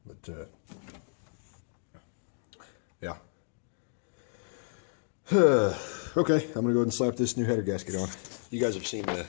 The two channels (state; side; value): silent; right; 57 dB below the other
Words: But, yeah. Okay, I'm gonna go ahead and slap this new header gasket on. You guys have seen the